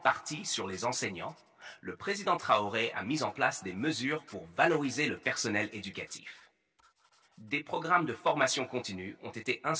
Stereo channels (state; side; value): identical; both; correlation 1.00